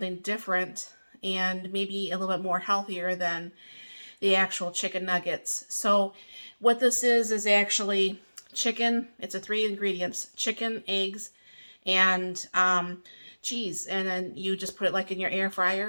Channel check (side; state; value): both; inverted; correlation -1.00